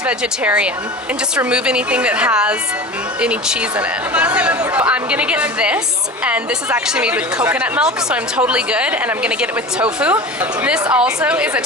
vegetarian, and just remove anything that has any cheese in it. I'm gonna get this, and this is actually made with coconut milk, so I'm totally good, and I'm gonna get it with tofu. This also is a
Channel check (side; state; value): both; normal; correlation 0.33